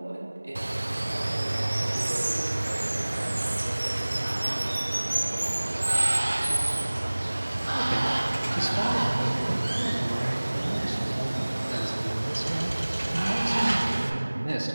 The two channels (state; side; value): inverted; both; correlation -1.00